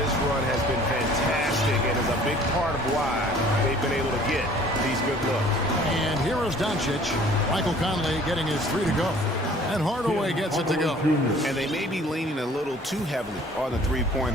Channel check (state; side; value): normal; both; correlation 0.53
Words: run has been fantastic and is a big part of why they've been able to get these good looks. And here is Doncic. Michael Conley getting his 3 to go. And Hardaway gets it to go. And they may be leaning a little too heavily on the